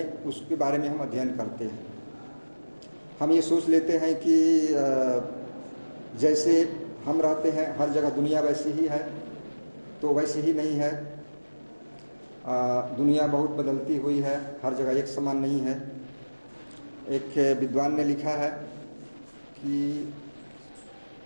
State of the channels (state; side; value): inverted; both; correlation -1.00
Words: उसके बारे में हम अध्ययन करते हैं. हम ये सोच लेते हैं कि जैसे हम रहते हैं हर जगह दुनिया वैसी ही है, तो वैसे ही नहीं है. दुनिया बहुत बदलती हुई है, हर जगह एक समान नहीं है. एक विद्वान ने लिखा है कि